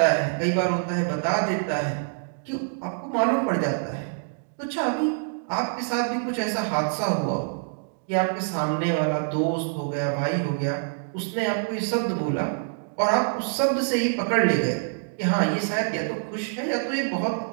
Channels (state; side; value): silent; left; digital silence